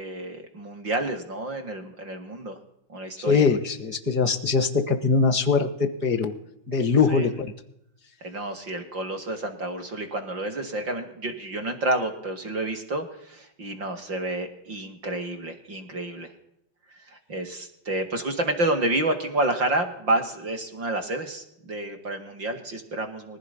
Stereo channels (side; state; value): left; late; 4.9 ms